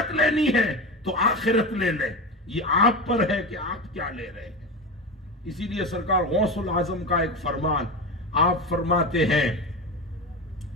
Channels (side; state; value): both; normal; correlation 0.23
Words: لینی ہے تو آخرت لے لیں. یہ آپ پر ہے کہ آپ کیا لے رہے ہیں. اسی لیے سرکار غوث العظم کا ایک فرمان, آپ فرماتے ہیں